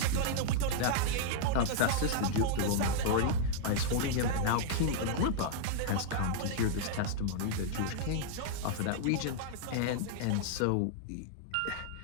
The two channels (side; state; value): both; different; correlation -0.01